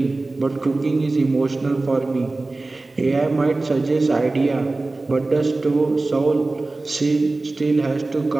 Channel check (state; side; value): quieter; left; 3.2 dB